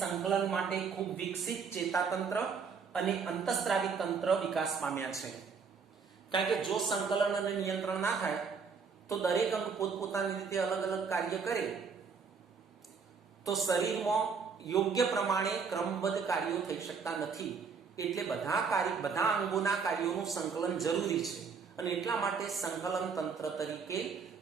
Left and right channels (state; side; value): quieter; left; 5.7 dB